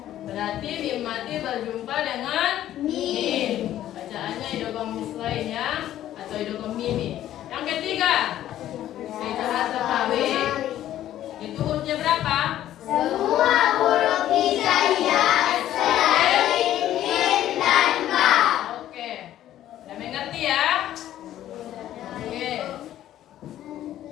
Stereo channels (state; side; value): quieter; right; 12.5 dB